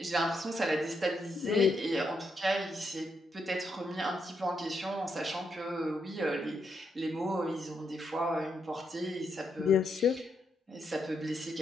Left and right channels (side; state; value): both; normal; correlation 0.80